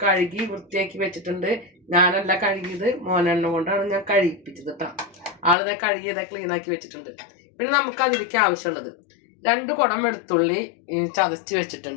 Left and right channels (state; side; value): drops out; right; at 5.6 s